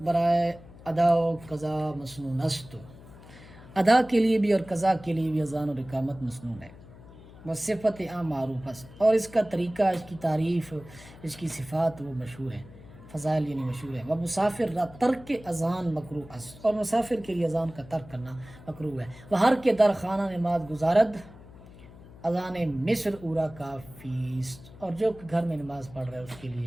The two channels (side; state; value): left; noise; hum, 19 dB below the sound